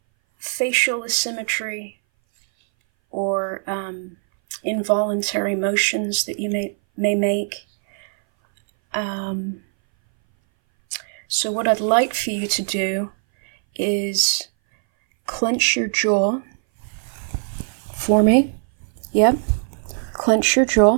facial asymmetry or involuntary motions that you may make. So what I'd like for you to do is clench your jaw for me. Yep, clench your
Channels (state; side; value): silent; left; 60 dB below the other